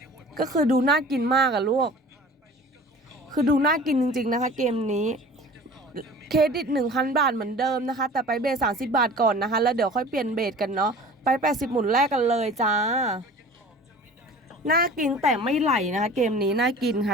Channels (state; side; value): normal; both; correlation 0.42